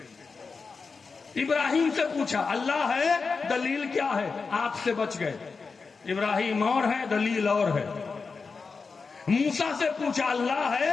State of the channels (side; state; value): right; quieter; 4.7 dB